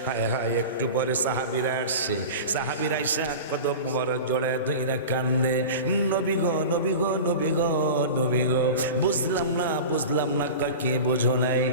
হায় হায়, একটু পরে সাহাবীরা আসছে, সাহাবীরা এসে কদম মোবারক জড়ায় ধইরা কান্দে, নবী গো নবী গো নবী গো নবী গো। বুঝলাম না বুঝলাম না, কি বোঝো নাই?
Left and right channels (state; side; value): inverted; both; correlation -0.31